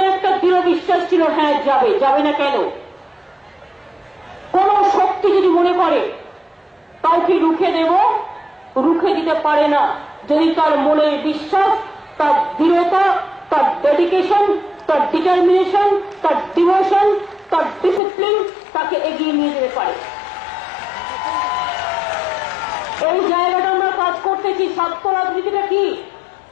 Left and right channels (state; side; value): drops out; right; at 18.0 s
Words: একটা দৃঢ় বিশ্বাস ছিল, হ্যাঁ যাবে। যাবে না কেন? কোন শক্তি যদি মনে করে কাউকে রুখে দেব, রুখে দিতে পারে না যদি তার মনের বিশ্বাস, তার দৃঢ়তা, তার ডেডিকেশন, তার ডিটারমিনেশন, তার ডিভোশন, তার ডিসিপ্লিন তাকে এগিয়ে নিয়ে যেতে পারে। এই জায়গাটা আমরা কাজ করতেছি। ছাত্র রাজনীতিটা কি?